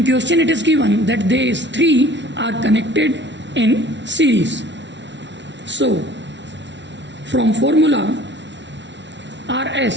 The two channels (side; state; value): left; late; 0.52 ms